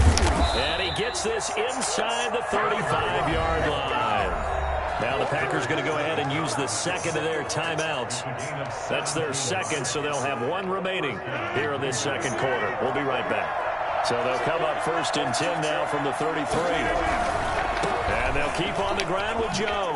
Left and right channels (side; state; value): both; identical; correlation 1.00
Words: And he gets this inside the 35-yard line. Now the Packers going to go ahead and use the second of their timeouts. That's their second, so they'll have one remaining here in this second quarter. We'll be right back. So they'll come up 1st and 10 now from the 33. And they'll keep on the ground with